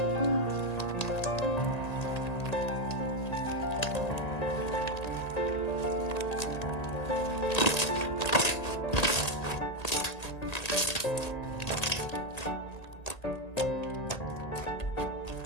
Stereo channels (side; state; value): right; late; 1.9 ms